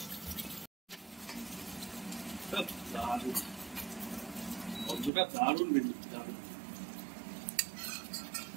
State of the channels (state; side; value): drops out; left; at 5.1 s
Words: গন্ধটা দারুণ বেরোচ্ছে, দারুণ।